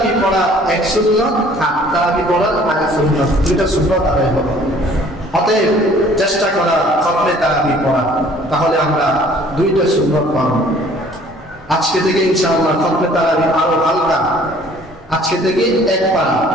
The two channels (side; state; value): both; normal; correlation 0.55